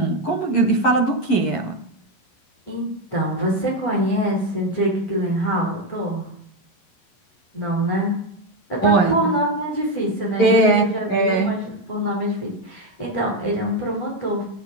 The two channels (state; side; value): late; right; 11 ms